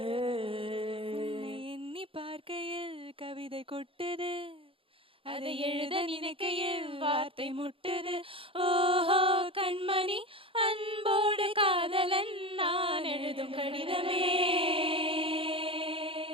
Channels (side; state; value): left; late; 0.26 ms